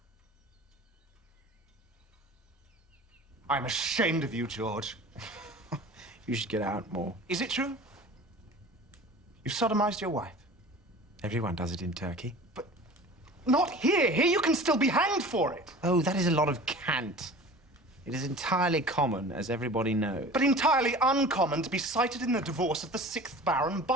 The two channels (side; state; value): both; normal; correlation 0.40